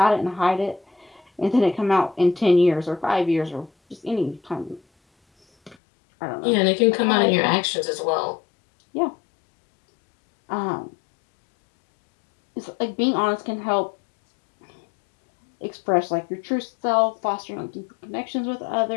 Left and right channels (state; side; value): drops out; right; at 5.8 s